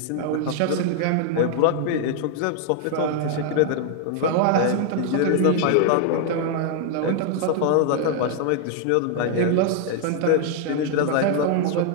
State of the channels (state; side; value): different; both; correlation 0.00